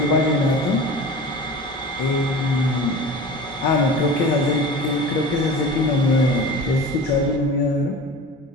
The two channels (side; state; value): both; normal; correlation 0.36